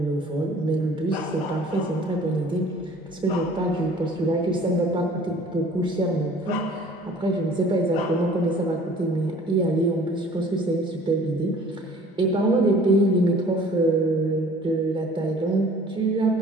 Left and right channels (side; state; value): both; normal; correlation 0.51